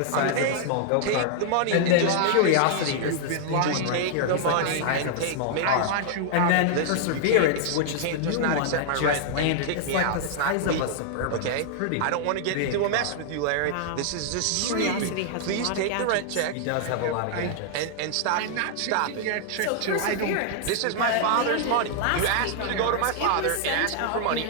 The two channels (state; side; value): different; both; correlation 0.00